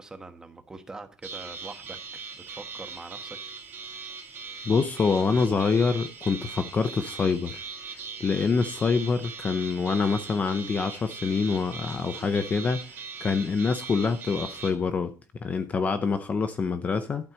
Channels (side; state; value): right; quieter; 4.1 dB